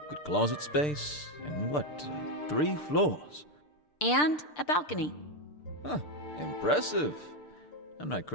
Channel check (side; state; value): right; late; 6.7 ms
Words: good closet space, and what, 3 floors? And a balcony. Huh, impressive. I'm not